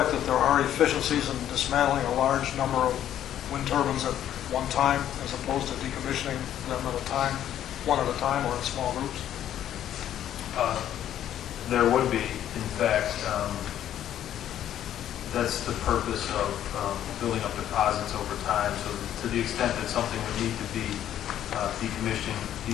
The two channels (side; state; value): right; quieter; 11.1 dB